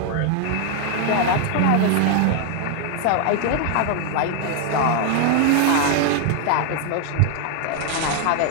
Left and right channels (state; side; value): different; both; correlation 0.00